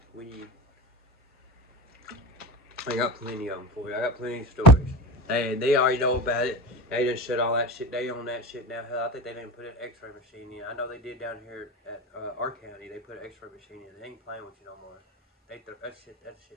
I got plenty of them for you. I got plenty of stories. And they already know about it. They done shut all that shit. They own that shit now. Hell, I think they didn't put an X-ray machine in. I know they did down here at our county. They put an X-ray machine in. They ain't playing with you no more. That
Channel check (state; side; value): normal; both; correlation 0.30